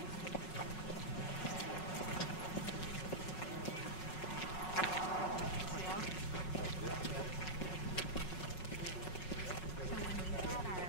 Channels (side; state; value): right; late; 5.4 ms